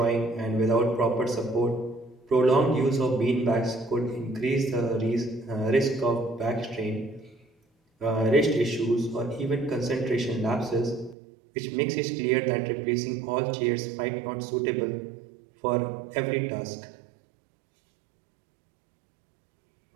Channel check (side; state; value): left; drops out; at 11.2 s